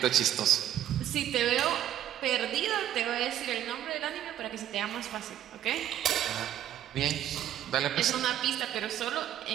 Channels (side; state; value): left; quieter; 11.6 dB